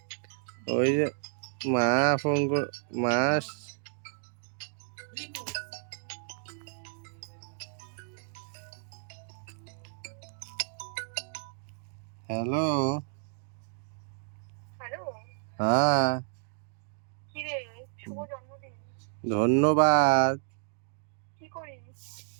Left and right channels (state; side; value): silent; left; digital silence